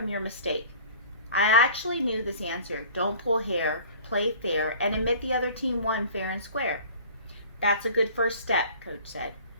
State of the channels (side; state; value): both; inverted; correlation -0.46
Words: your mistake? I actually knew this answer. Don't pull hair, play fair, and admit the other team won fair and square. That's a good first step, Coach said.